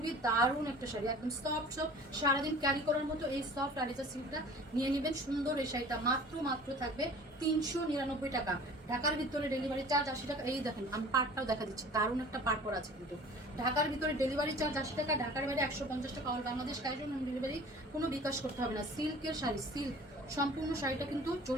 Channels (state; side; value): normal; both; correlation 0.45